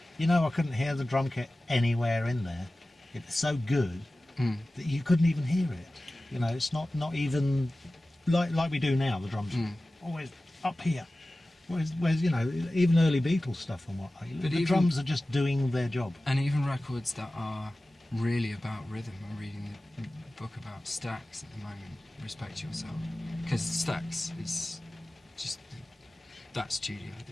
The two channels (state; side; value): normal; both; correlation 0.96